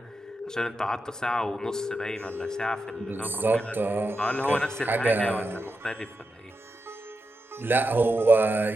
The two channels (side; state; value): both; normal; correlation 0.88